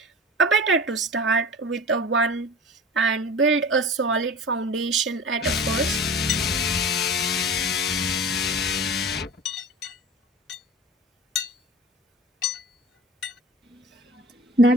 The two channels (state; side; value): normal; both; correlation 0.36